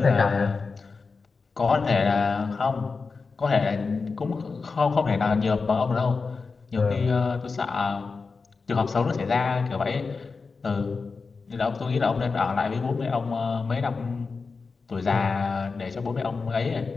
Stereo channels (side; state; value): right; quieter; 4.5 dB